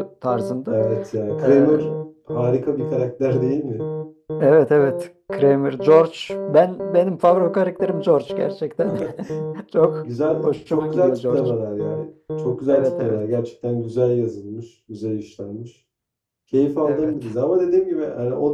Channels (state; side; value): identical; both; correlation 1.00